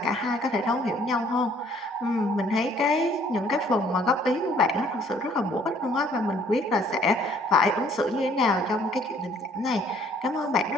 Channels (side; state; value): both; normal; correlation 0.60